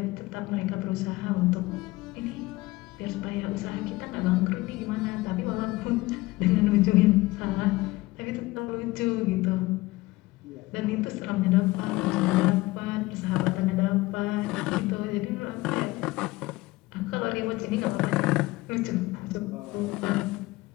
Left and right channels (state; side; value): quieter; right; 20.1 dB